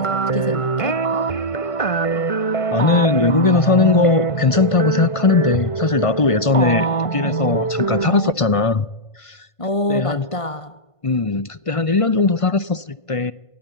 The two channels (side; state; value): right; late; 1.5 ms